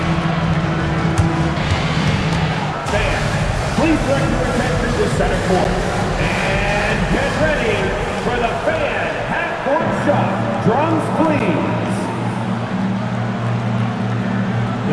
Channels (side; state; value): both; identical; correlation 1.00